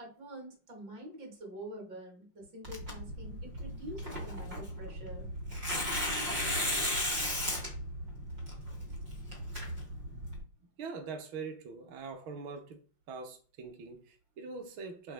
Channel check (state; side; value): late; left; 5.5 ms